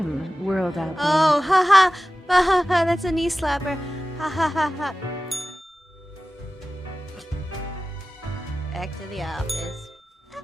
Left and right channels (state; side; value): normal; both; correlation 0.95